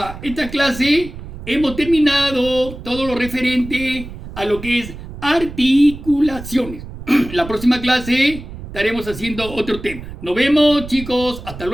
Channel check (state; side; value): noise; right; rumble, 12 dB below the sound